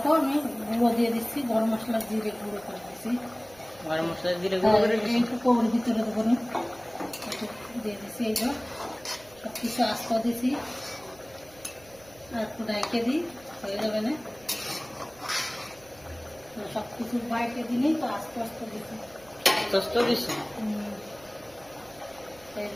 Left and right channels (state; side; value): noise; right; hum, 25 dB below the sound